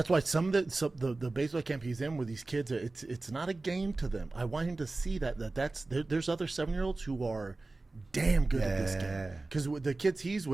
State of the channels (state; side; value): quieter; left; 3.3 dB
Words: why some of the baseball camp he's in with these kids, it's not a game to them. I want him to see there's other 7-year-olds who are damn good at this game, because the kids he's